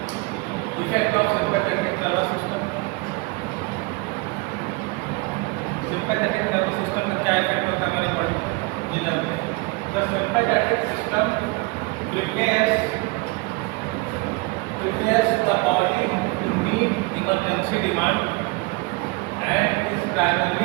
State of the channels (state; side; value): quieter; left; 26.4 dB